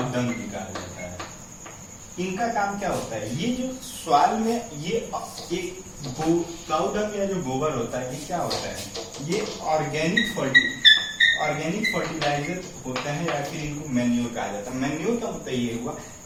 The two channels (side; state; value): both; identical; correlation 1.00